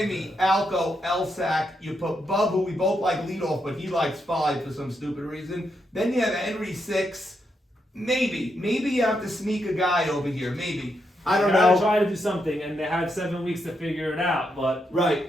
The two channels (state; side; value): normal; both; correlation 0.81